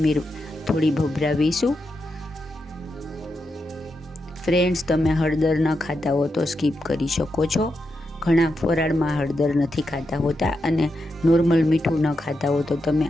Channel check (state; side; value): normal; both; correlation 0.86